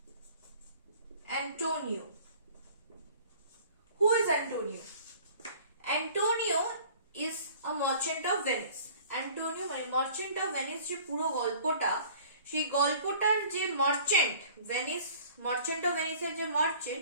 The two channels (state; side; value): inverted; both; correlation -0.49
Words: Antonio. Who is Antonio? Antonio is a merchant of Venice. Antonio মানে মার্চেন্ট অফ ভেনিস যে পুরো গল্পটা, সেই গল্পটার যে মার্চেন্ট অফ ভেনিসের যে